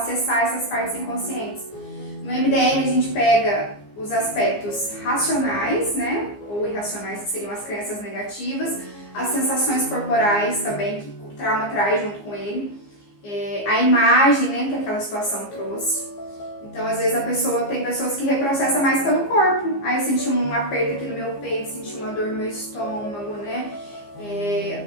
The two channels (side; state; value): right; late; 15 ms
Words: essas partes inconscientes. No MDR a gente pega os aspectos racionais, né? Ou irracionais, que seriam as crenças negativas, as sensações corporais também, que o trauma traz junto com ele, a imagem, né, que aquela situação trouxe. Então, às vezes tem pessoas que reprocessam mais pelo corpo. Aí eu senti um aperto aqui no meu peito, senti uma dor no meu estômago, né?